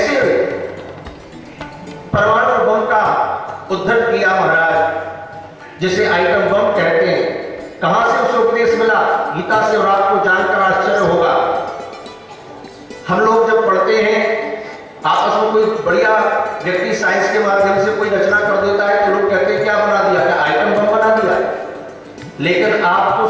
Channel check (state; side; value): identical; both; correlation 1.00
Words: परमाणु बम का उद्धरण किया महाराज, जिसे आइटम बम कहते हैं। कहां से उसे उपदेश मिला? गीता से, और आपको जानकर आश्चर्य होगा, हम लोग जब पढ़ते हैं आपस में, कोई बढ़िया व्यक्ति साइंस के माध्यम से कोई रचना कर देता है तो लोग कहते हैं क्या बना दिया, क्या आइटम बम बना दिया। लेकिन आपको